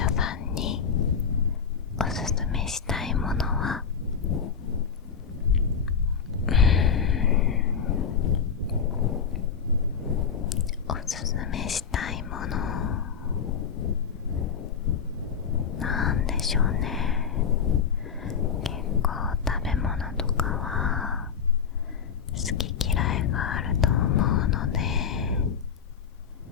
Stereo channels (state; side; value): quieter; right; 6.9 dB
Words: さんにおすすめしたいものは、おすすめしたいものなんでしょうね。結構食べ物とかは好き嫌いがあると思うので、